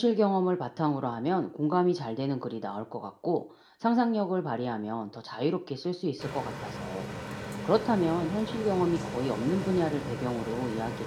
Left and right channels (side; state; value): both; identical; correlation 1.00